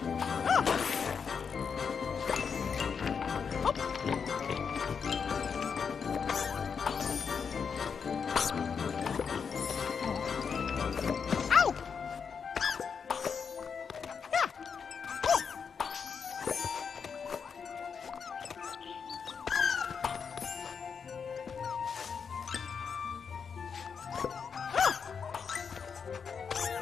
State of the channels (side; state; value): right; quieter; 6.3 dB